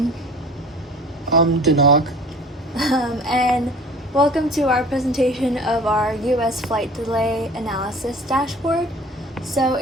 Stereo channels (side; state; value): both; normal; correlation 0.45